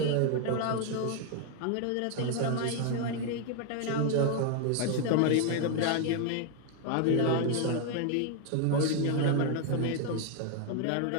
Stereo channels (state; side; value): different; both; correlation 0.01